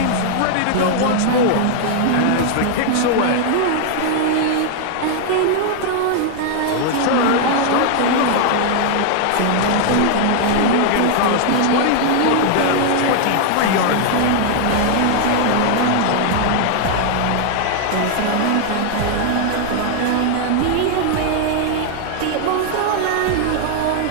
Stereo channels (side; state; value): both; different; correlation 0.00